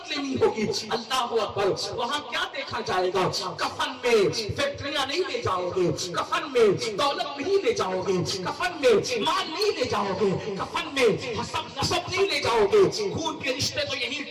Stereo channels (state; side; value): identical; both; correlation 1.00